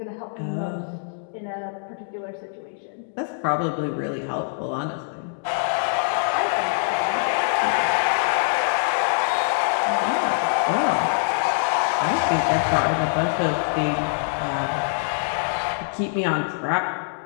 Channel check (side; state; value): right; silent; digital silence